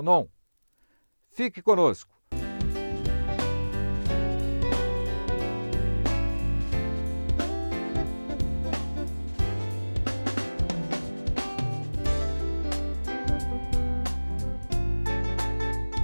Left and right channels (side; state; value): both; inverted; correlation -1.00